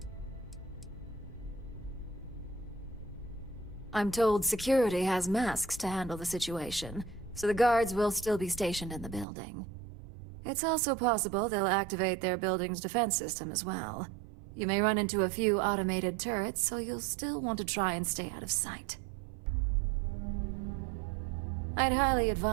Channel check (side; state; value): left; drops out; at 9.2 s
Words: I'm told security has masks to handle the situation, so the guards will still be stationed in the building. It's also possible they'll activate their building's defense system as well. You may run into a few automated turrets, so you'll still want to try and stay out of sight. I'd highly